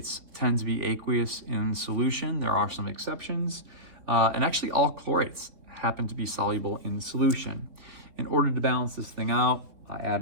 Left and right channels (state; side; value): late; left; 3.8 ms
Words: tend to be aqueous in solution. There are some exceptions. And actually all chlorates happen to be soluble in solution. In order to balance this thing out, I add